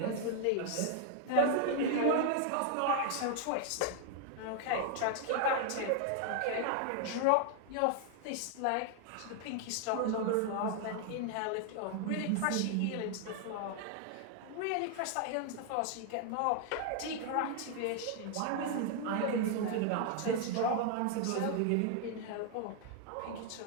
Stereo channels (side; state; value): both; different; correlation 0.00